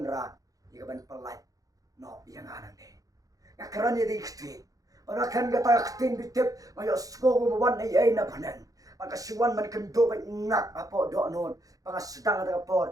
igaban palai no yang anan de ngakaran ni kitin para kan gata kitin bitip mayo sko mo wan ay na panan pagkasiwan man kendo ba ngak apo do non pangasdang ta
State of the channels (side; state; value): left; late; 0.17 ms